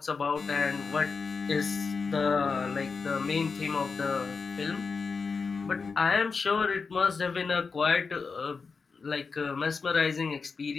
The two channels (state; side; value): quieter; right; 4.9 dB